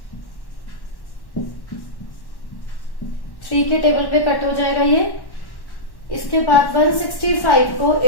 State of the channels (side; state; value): right; late; 1.1 ms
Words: थ्री के टेबल पे कट हो जाएगा ये। इसके बाद 165 को